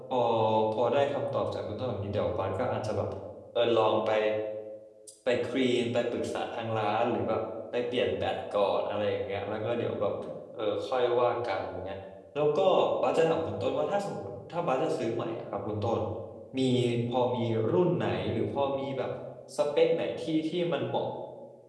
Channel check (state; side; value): identical; both; correlation 1.00